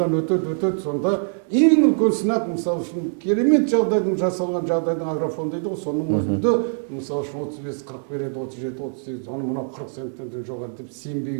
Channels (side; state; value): left; silent; digital silence